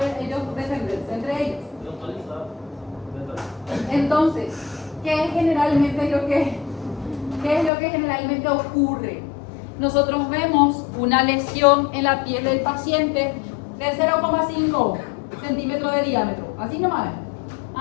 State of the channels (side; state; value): right; drops out; at 7.7 s